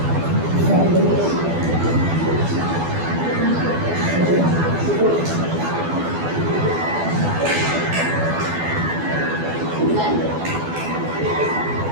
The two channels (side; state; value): left; late; 12 ms